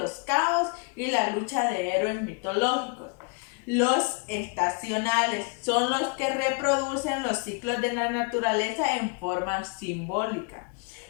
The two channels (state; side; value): quieter; right; 33.5 dB